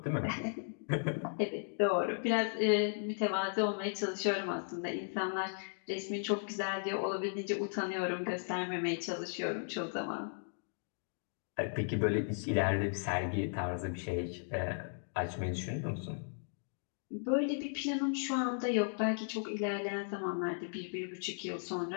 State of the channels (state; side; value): silent; right; digital silence